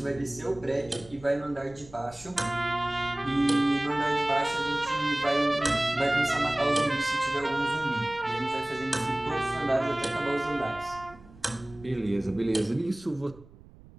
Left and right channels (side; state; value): right; noise; rumble, 22 dB below the sound